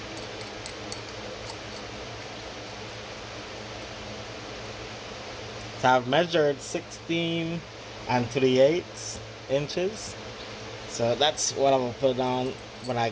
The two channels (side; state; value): both; identical; correlation 1.00